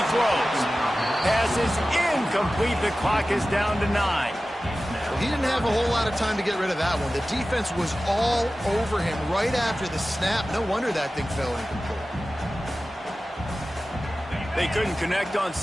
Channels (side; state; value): both; normal; correlation 0.95